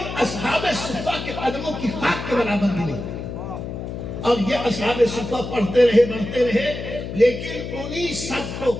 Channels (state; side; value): noise; left; hum, 7 dB below the sound